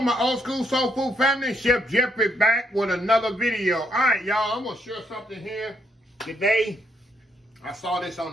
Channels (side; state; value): both; normal; correlation 0.74